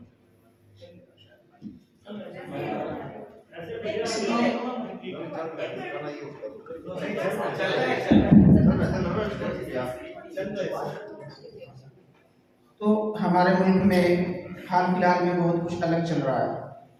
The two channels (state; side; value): identical; both; correlation 1.00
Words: तो हमारे मुल्क में हाल फिलहाल में बहुत कुछ अलग चल रहा है।